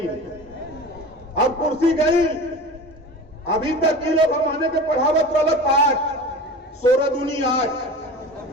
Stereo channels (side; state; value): both; normal; correlation 0.34